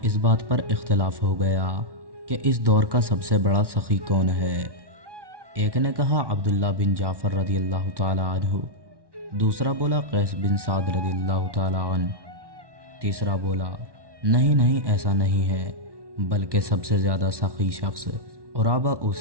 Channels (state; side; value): late; left; 1.1 ms